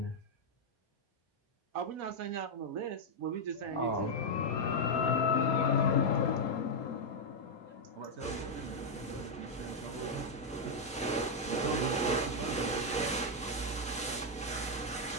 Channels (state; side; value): normal; both; correlation -0.01